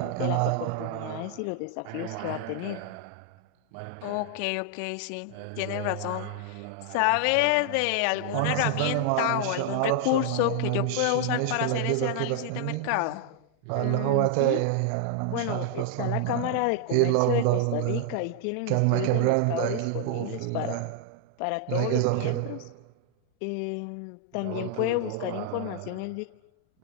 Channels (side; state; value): both; different; correlation 0.00